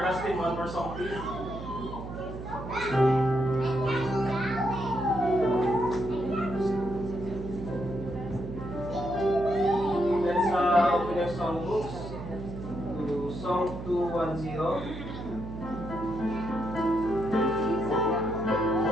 Dustin, one more song please. Let's open your songbooks to Song 210.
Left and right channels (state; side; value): noise; right; hum, 9 dB below the sound